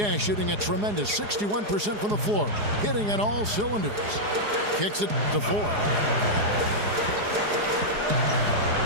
shooting a tremendous 61% from the floor, hitting on all cylinders. Kicks it to Ford.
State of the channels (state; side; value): late; left; 4.8 ms